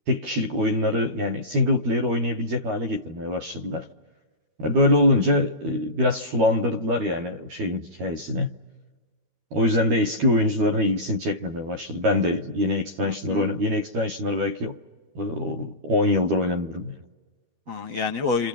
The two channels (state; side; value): late; left; 12 ms